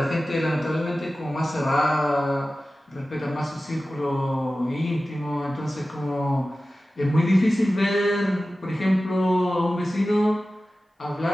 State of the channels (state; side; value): normal; both; correlation 0.95